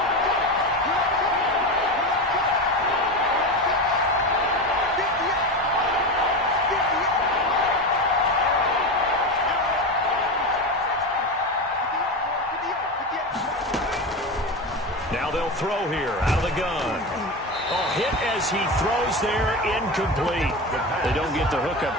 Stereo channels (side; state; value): both; normal; correlation 0.21